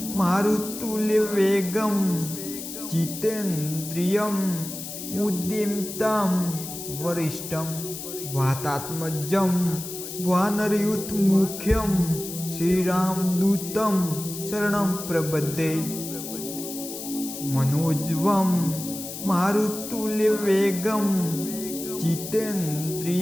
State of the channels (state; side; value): noise; left; hiss, 9 dB below the sound